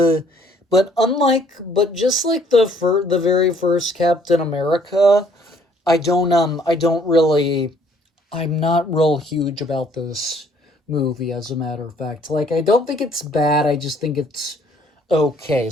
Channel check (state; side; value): normal; both; correlation 0.61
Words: just like the very first Captain America, I'm not real huge about this movie, as a matter of fact. Like, I don't think it's bad. I just think it's okay.